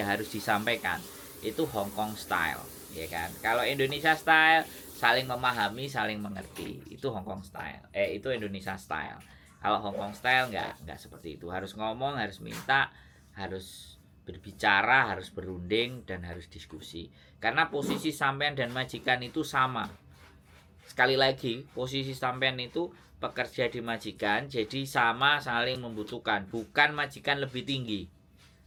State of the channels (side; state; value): both; identical; correlation 1.00